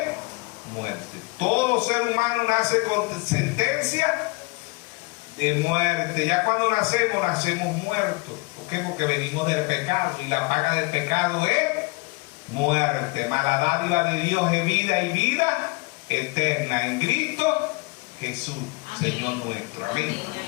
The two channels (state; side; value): quieter; right; 26.8 dB